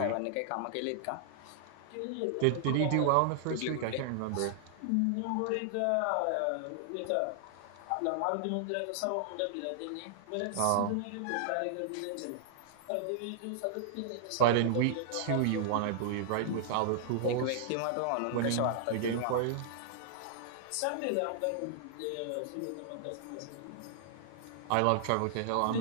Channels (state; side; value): different; both; correlation -0.01